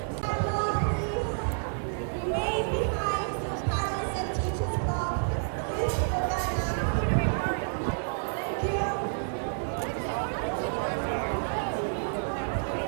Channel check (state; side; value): silent; left; digital silence